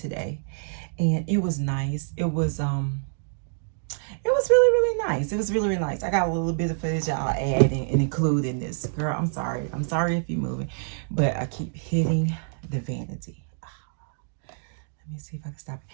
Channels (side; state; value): left; silent; digital silence